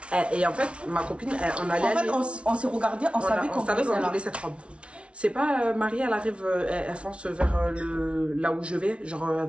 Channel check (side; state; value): left; late; 0.060 ms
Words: Et en fait, ma copine, on allait aller... En fait, on s'est regardé, on savait qu'on voulait cette robe. C'est pas Marie, elle arrive, elle fonce vers là où je vais, genre elle